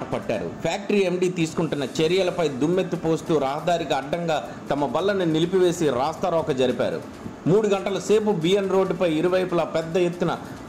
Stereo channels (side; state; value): both; identical; correlation 1.00